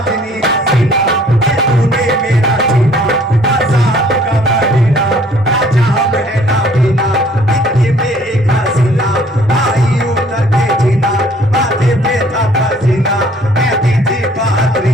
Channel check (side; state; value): both; normal; correlation 0.58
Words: हसीना, ये तूने मेरा जीना आजाद का महीना, ना जाम है ना पीना, इतनी बेहसीना आई उतर के जीना, माथे पे था पसीना, कहती थी